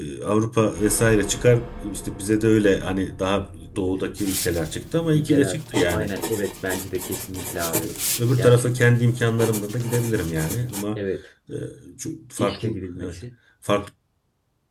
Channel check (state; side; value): identical; both; correlation 1.00